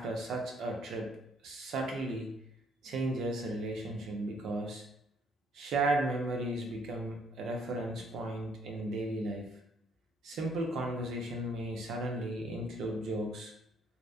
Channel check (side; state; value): both; normal; correlation 0.66